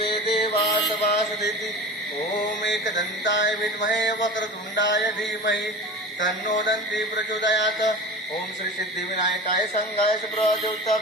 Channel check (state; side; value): normal; both; correlation 0.34